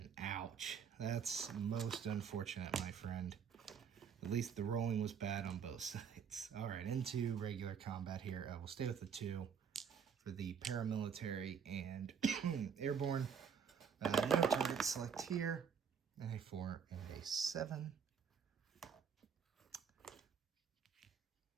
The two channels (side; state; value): left; quieter; 7.1 dB